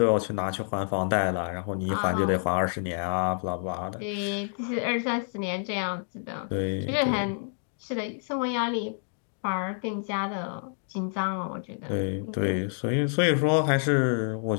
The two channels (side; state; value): right; silent; 59 dB below the other